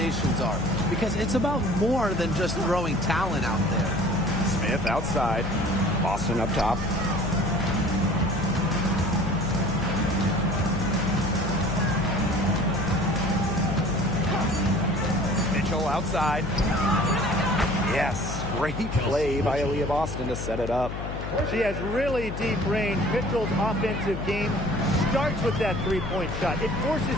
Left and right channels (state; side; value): noise; left; hum, 6 dB below the sound